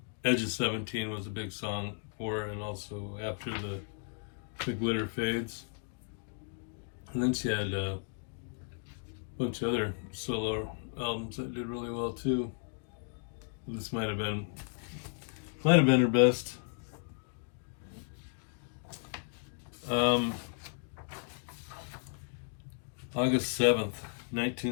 Edge of 17 was a big song for her, and also After the Glitter Fades. And then she had a bunch of other solo albums that did really well too. This might have been her best. August 7th,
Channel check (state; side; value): silent; right; 55 dB below the other